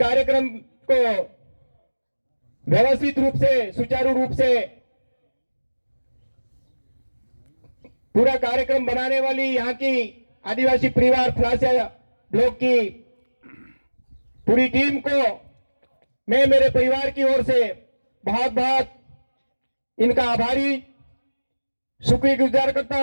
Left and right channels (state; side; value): inverted; both; correlation -1.00